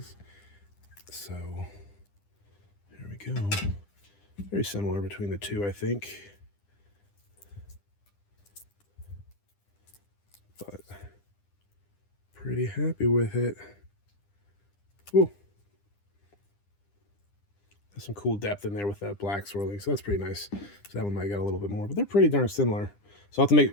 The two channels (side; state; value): right; late; 9.9 ms